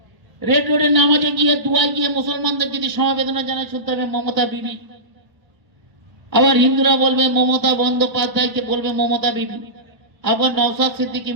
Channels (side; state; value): left; late; 1.5 ms